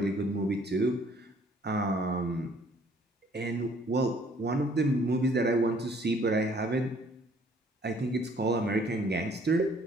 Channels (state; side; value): normal; both; correlation 0.60